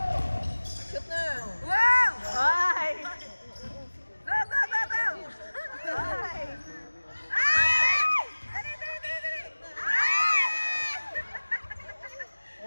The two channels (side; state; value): both; inverted; correlation -1.00